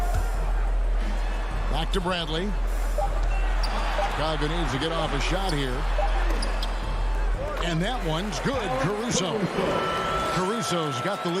Back to Bradley. Chicago needs to get off a shot here. And that one's good. Caruso's got the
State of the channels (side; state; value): both; identical; correlation 1.00